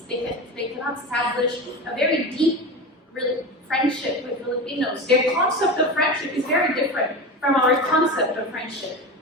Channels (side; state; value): both; normal; correlation 0.25